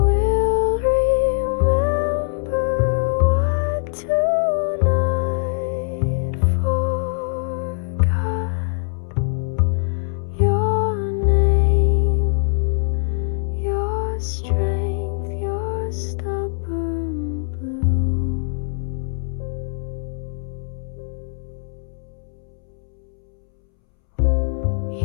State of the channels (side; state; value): right; silent; 64 dB below the other